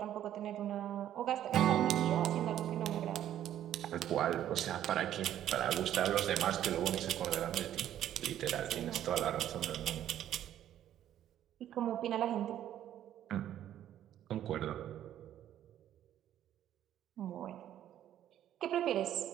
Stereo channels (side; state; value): left; quieter; 11.4 dB